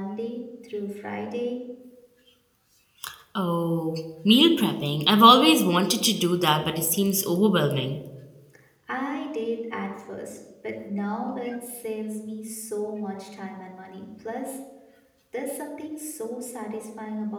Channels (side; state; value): both; identical; correlation 1.00